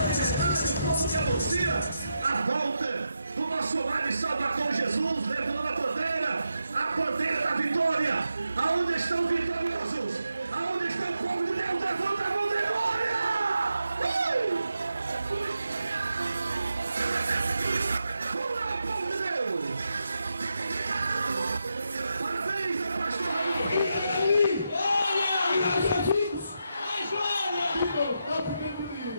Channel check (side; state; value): both; inverted; correlation -0.85